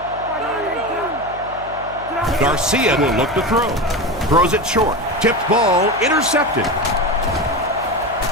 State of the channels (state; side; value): noise; left; hum, 18 dB below the sound